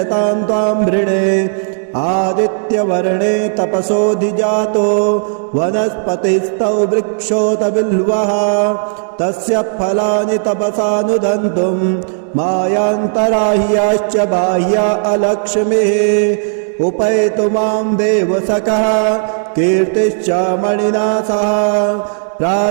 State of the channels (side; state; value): left; silent; digital silence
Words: तां त्वां वृणे। आदित्यवर्णे तपसोऽधिजातो वनस्पतिस्तौ वृक्षोत बिल्वः तस्य फलानि तपसानुदन्तुं मायान्तराह्याश्च बाह्या अलक्ष्मीः। उपैतु मां देवसखः कीर्तिश्च मणिना सह